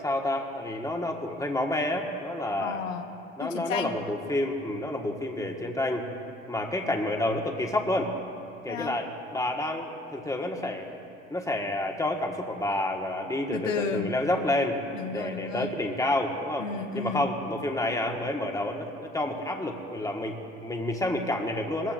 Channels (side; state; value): both; normal; correlation 0.58